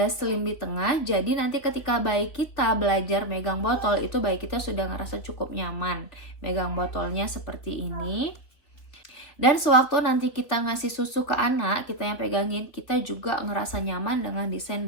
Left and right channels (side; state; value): right; late; 3.6 ms